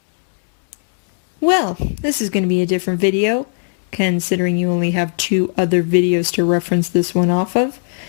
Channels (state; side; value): silent; right; digital silence